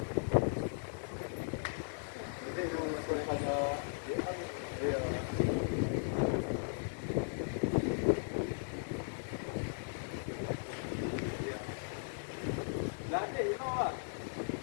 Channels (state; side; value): silent; right; digital silence